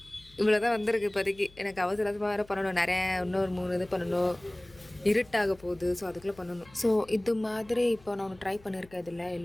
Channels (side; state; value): left; noise; hum, 25 dB below the sound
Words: இவ்வளோ தான் வந்திருக்கு இப்போதைக்கு. எனக்கு அவசரமாக வேறு பண்ணணும். நிறைய இன்னொரு 3 இது பண்ணணும். இருட்டாக போகுது. ஸோ அதுக்குள்ளே பண்ணணும். ஸோ இது மாதிரி இப்போ நான் ஒன்று ட்ரை பண்ணியிருக்கேன். இதில்